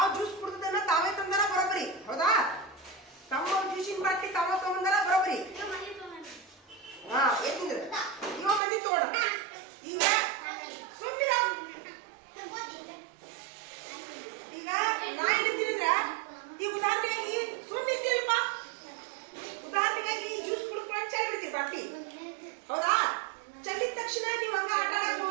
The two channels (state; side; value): drops out; left; at 8.6 s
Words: ಜ್ಯೂಸ್ ಕುಡ್ದನ್ನ ತಾವೇ ತಂದಾರ ಬರೋಬರಿ. ಹೌದಾ? ತಮ್ಮ ಜ್ಯೂಸಿನ ಬಾಟ್ಲಿ ತಾವ ತಗೊಂಡಾರ ಬರೋಬರಿ. ಹಾ, ಯಾಕಂದ್ರೆ ಇವಾಗ ಬಂದಿ ತಗೋಣ. ಈಗ ಸುಮ್ಮಿರ, ಈಗ ನಾ ಹೇಳ್ತೀನಿಂದ್ರ ಈ ಉದಾಹರಣೆಯಾಗಿ ಸುಮ್ಮಿರ್ತೀರಪ್ಪ. ಉದಾಹರಣೆಗಾಗಿ ಜ್ಯೂಸ್ ಕುಡ್ಕೊಂಡು ಚಲ್ ಬಿಡ್ತೀರಿ ಬಾಟ್ಲಿ. ಹೌದಾ? ಚೆಲ್ಲಿದ ತಕ್ಷಣ ನೀವು ಹಂಗ ಆಟ ಆಡಕ್